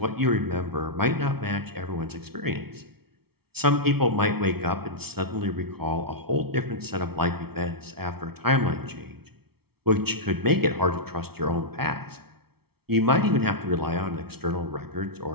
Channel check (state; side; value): late; left; 0.95 ms